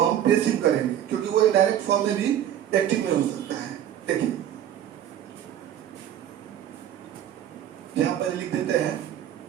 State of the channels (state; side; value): quieter; left; 10.8 dB